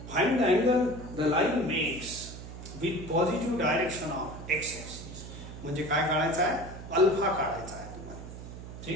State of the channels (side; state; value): right; noise; hum, 12 dB below the sound